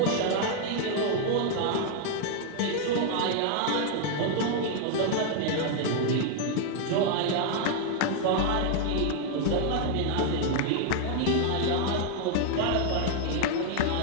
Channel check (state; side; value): different; both; correlation 0.00